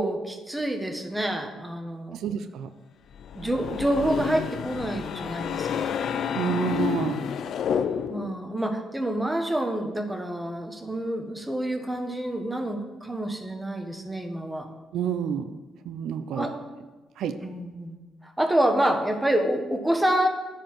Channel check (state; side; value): normal; both; correlation 0.81